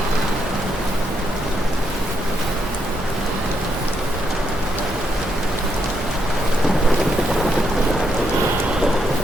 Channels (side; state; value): both; normal; correlation 0.79